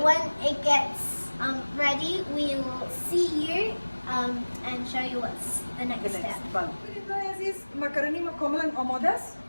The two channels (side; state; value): both; inverted; correlation -1.00